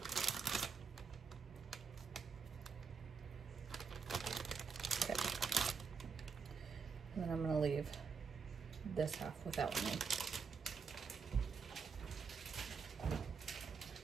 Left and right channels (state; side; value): quieter; left; 5.6 dB